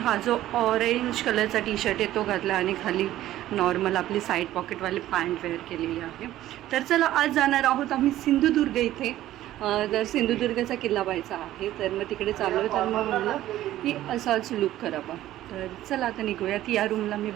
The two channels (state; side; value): quieter; left; 14.0 dB